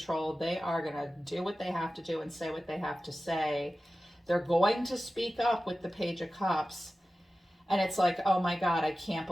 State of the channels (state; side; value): normal; both; correlation 0.95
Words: They are going to do what they have to do and say what they have to say. They're going to speak up with the Page of Cups. And it's like, oh my God, I can't